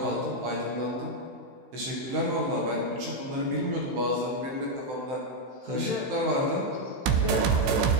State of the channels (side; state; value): left; late; 16 ms